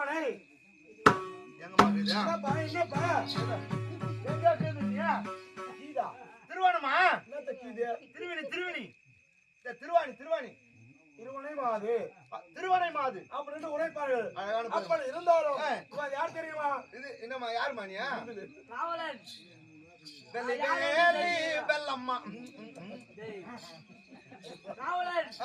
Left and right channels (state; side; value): identical; both; correlation 1.00